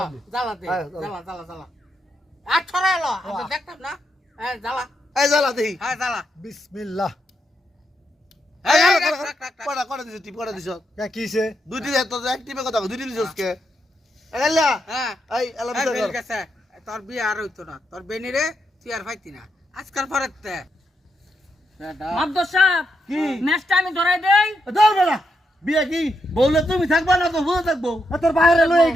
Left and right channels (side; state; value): both; normal; correlation 0.82